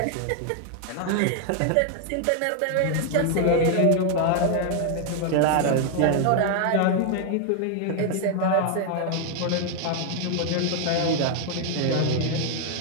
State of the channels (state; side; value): different; both; correlation 0.00